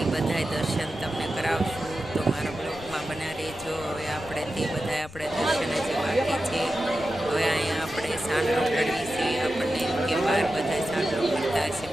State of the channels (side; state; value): left; noise; rumble, 17 dB below the sound